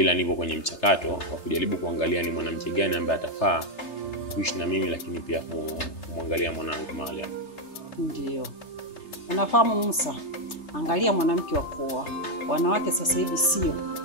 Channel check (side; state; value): right; late; 3.3 ms